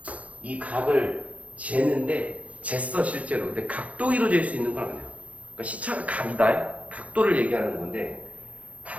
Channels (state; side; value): late; left; 0.067 ms